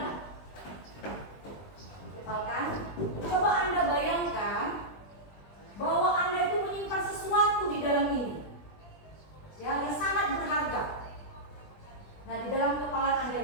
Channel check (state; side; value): late; right; 20 ms